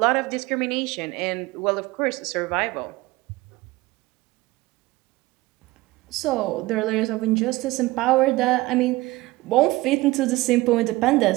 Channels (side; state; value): left; quieter; 20.0 dB